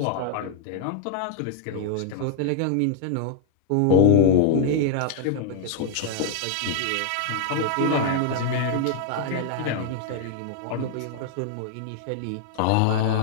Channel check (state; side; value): different; both; correlation -0.01